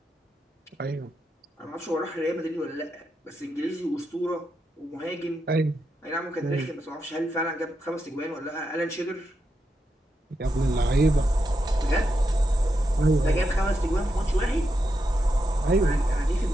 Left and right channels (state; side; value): normal; both; correlation 0.85